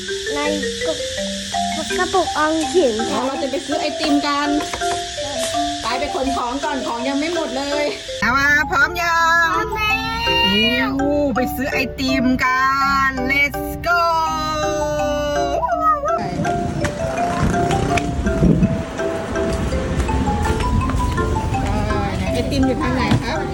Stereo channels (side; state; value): both; identical; correlation 1.00